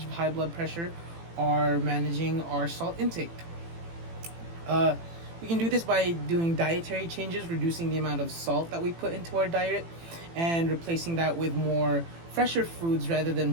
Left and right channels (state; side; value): late; left; 18 ms